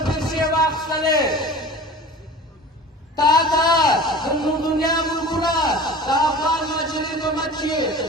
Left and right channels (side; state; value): both; normal; correlation 0.39